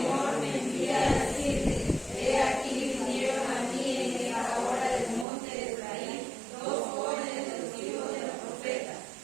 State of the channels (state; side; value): drops out; left; at 5.2 s